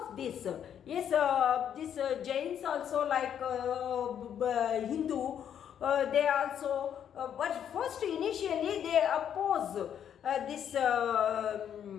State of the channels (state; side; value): quieter; right; 9.1 dB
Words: of this, this Jains also, like Hindu, they also, but first initially they oppose this,